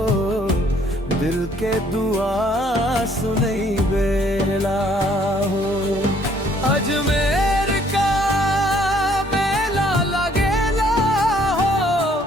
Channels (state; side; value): normal; both; correlation 0.63